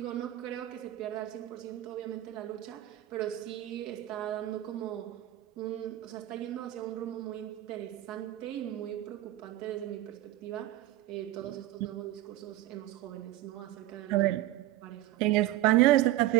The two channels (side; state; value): left; quieter; 15.0 dB